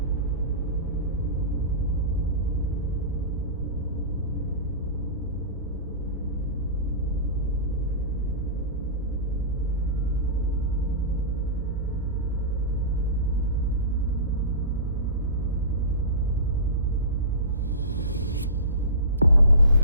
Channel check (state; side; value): inverted; both; correlation -0.31